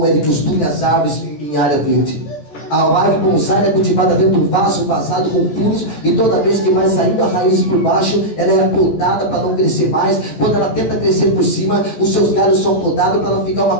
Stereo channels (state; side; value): late; right; 13 ms